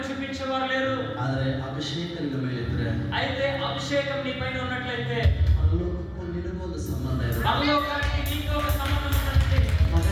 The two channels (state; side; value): identical; both; correlation 1.00